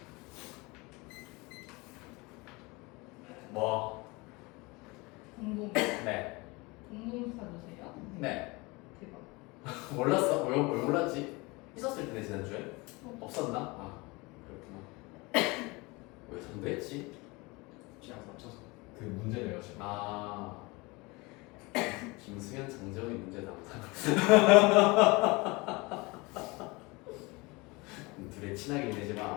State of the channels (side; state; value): right; quieter; 25.0 dB